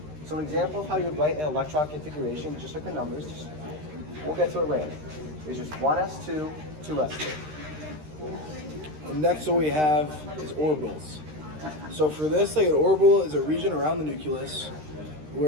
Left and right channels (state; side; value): late; left; 13 ms